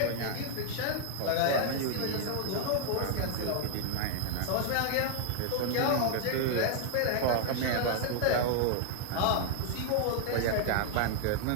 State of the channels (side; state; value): both; different; correlation 0.00